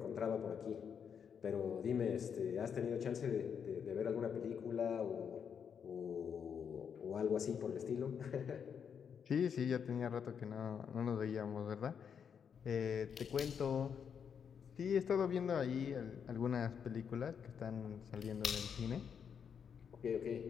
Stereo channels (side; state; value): right; quieter; 7.3 dB